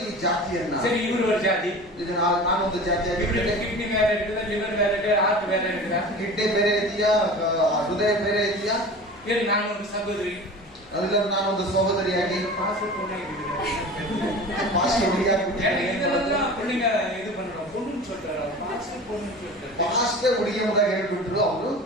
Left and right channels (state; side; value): normal; both; correlation 0.36